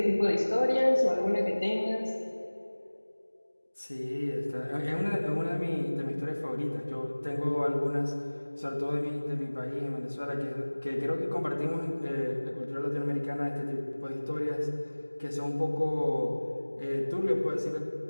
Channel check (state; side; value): inverted; both; correlation -1.00